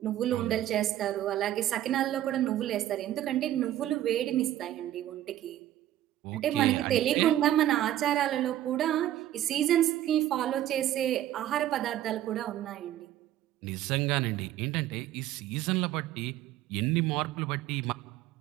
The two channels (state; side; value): quieter; left; 12.9 dB